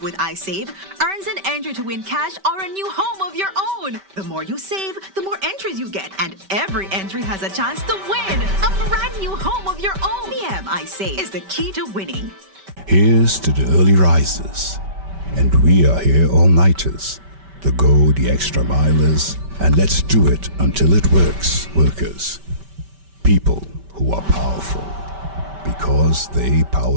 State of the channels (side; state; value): left; late; 5.2 ms